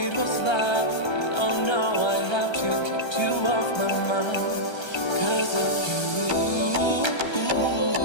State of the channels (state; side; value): late; right; 1.3 ms